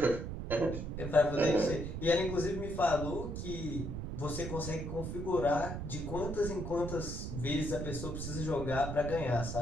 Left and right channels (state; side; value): noise; right; rumble, 5 dB below the sound